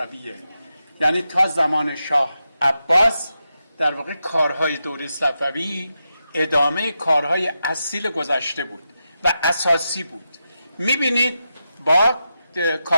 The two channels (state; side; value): inverted; both; correlation -0.88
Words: یعنی تا زمان شاه عباس در واقع کارهای دوره صفوی ادامه کارهای اصیل گذشته بود و اساسی بود. میبینید با